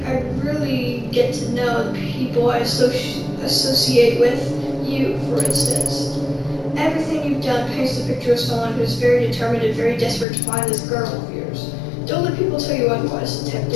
get to know the people I associate with. You, for instance. Everything you've done paints the picture of someone who's very determined and very desperate to find this girl of yours. Don't let people tell you otherwise,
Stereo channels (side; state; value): right; drops out; at 10.2 s